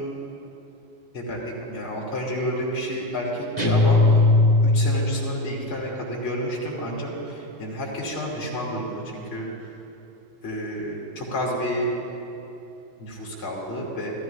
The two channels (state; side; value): late; right; 1.9 ms